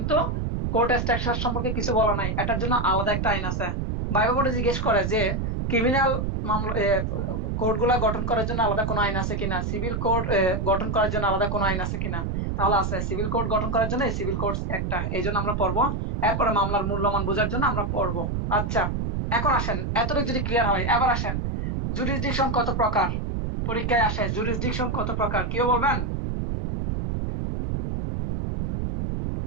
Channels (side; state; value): right; noise; rumble, 1 dB below the sound